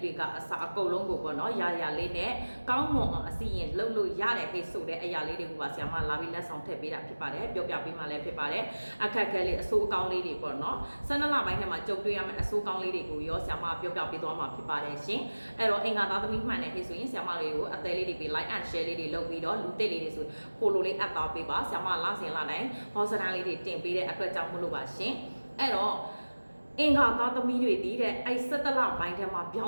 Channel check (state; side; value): inverted; both; correlation -1.00